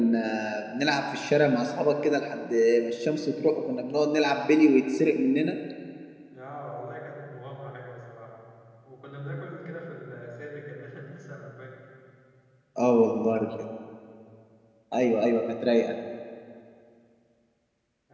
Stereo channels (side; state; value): both; identical; correlation 1.00